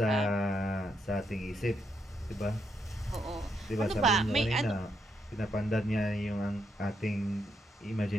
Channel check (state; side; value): normal; both; correlation 0.79